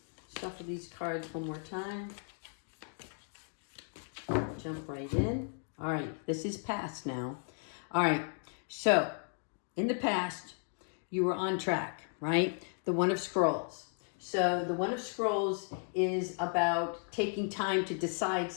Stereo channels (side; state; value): right; silent; 54 dB below the other